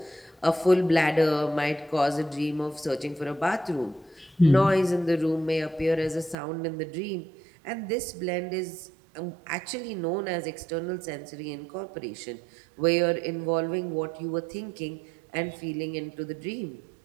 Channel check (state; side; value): drops out; left; at 6.4 s